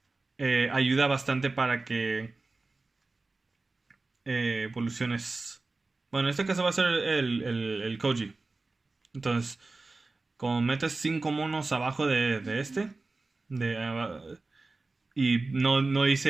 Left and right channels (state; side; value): quieter; left; 3.5 dB